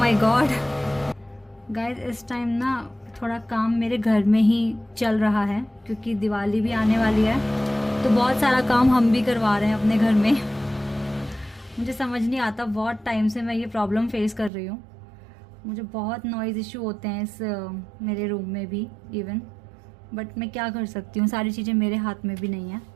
गॉड गाइज, इस टाइम ना थोड़ा काम मेरे घर में ही चल रहा है क्योंकि दिवाली भी आने वाली है, तो बहुत सारा काम हम भी करवा रहे हैं अपने घर में। मुझे समझ नहीं आता, बहुत टाइम से मैं ये प्रॉब्लम फेस कर रही हूँ। मुझे बहुत नॉइज़ इशू होते हैं इस मेरे रूम में भी इवन, बट मैं क्या कर सकती हूँ, सारी चीज़ें मेरे हाथ में भी नहीं है।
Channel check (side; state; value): left; drops out; at 14.5 s